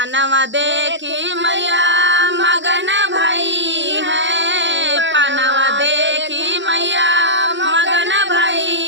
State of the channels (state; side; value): late; left; 0.53 ms